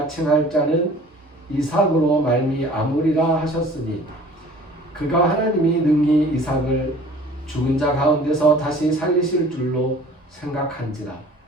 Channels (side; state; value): both; normal; correlation 0.48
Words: 칭할 자는 이삭으로 말미암으리라 하셨으니 그가 하나님이 능히 이삭을 죽은 자 가운데서 다시 살리실 줄로 생각한지라.